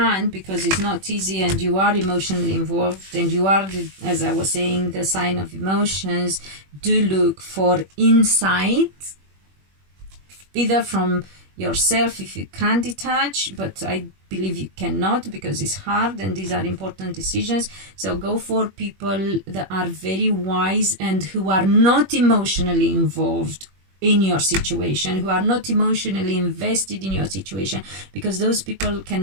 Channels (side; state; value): left; late; 21 ms